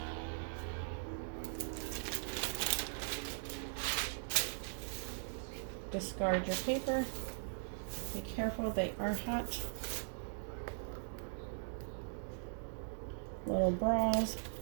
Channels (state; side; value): silent; left; digital silence